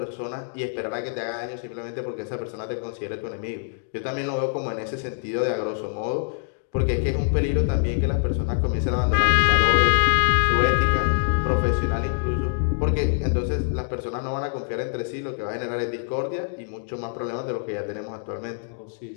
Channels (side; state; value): right; silent; digital silence